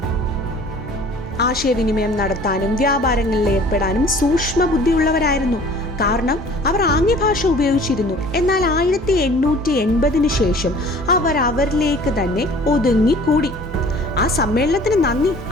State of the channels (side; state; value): both; normal; correlation 0.49